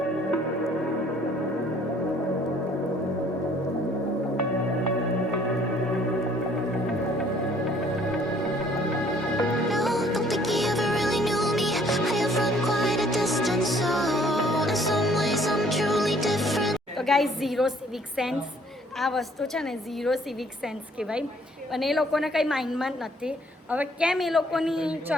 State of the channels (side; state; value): both; normal; correlation 0.60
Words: તો ગાઈઝ, ઝીરો સિવિક સેન્સ આ વસ્તુ છે ને, ઝીરો સિવિક સેન્સ કહેવાય. અને એ લોકોને કંઈ માઇન્ડમાં જ નથી. હવે કેમ એ લોકોની